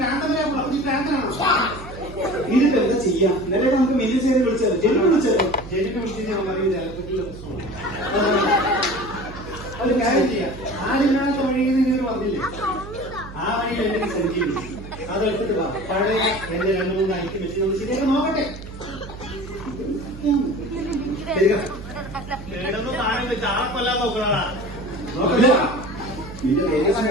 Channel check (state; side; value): noise; right; hum, 13 dB below the sound